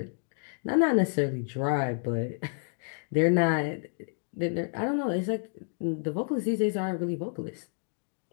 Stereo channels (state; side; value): silent; right; digital silence